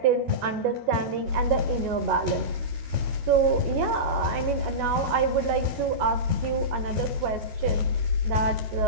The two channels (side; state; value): left; late; 13 ms